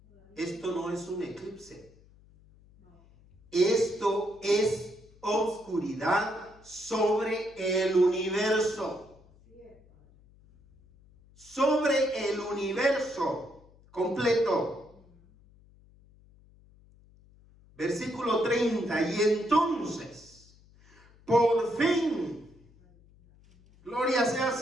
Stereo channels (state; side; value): noise; left; hum, 27 dB below the sound